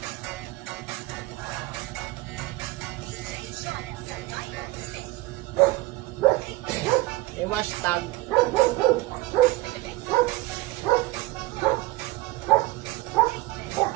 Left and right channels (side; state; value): left; quieter; 18.9 dB